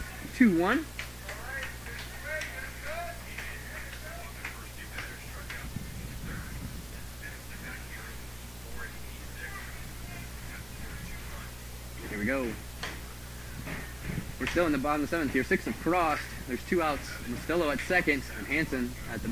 2-1. Here we go. We're still in the bottom of the 7th here. 6 have crossed. There's 2 outs. Mastillo at second and Hansen at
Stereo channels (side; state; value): right; noise; hum, 23 dB below the sound